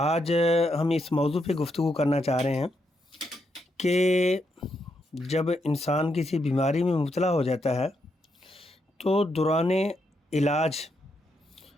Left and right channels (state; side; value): normal; both; correlation 0.80